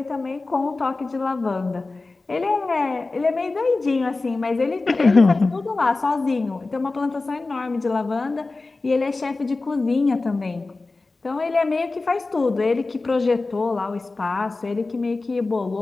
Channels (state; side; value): quieter; right; 3.5 dB